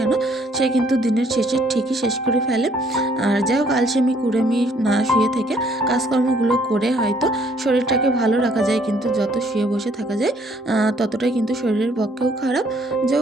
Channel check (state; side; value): normal; both; correlation 0.64